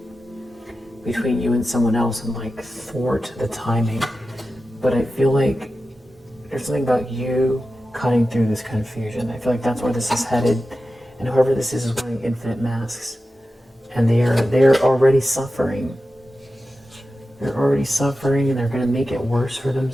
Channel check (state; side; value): normal; both; correlation 0.93